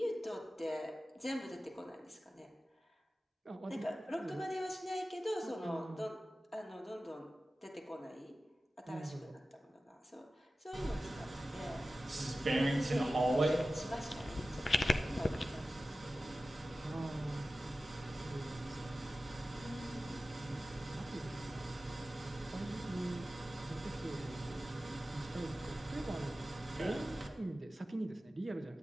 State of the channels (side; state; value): both; normal; correlation 0.95